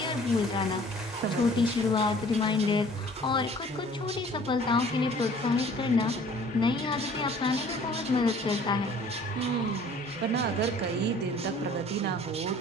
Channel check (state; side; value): normal; both; correlation 0.52